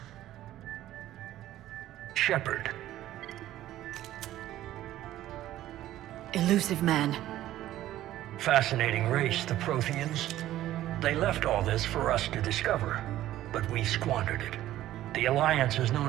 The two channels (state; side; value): quieter; left; 13.9 dB